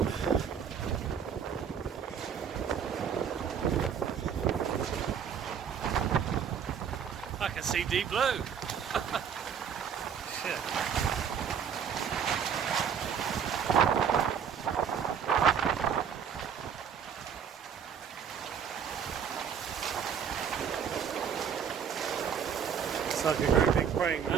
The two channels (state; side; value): quieter; left; 7.6 dB